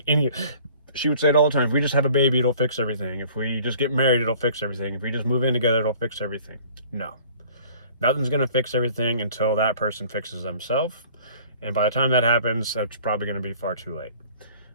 she would say it all the time, if we just have a baby, it'll fix everything. If we just get married, it'll fix everything. If we just move in together, it'll fix everything. No. Nothing's going to fix everything until that person fixes themselves. And by the time that happens, that's probably going to be far too late.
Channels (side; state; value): both; inverted; correlation -0.51